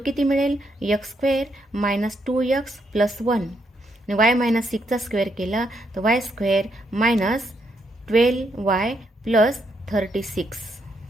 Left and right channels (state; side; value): normal; both; correlation 0.77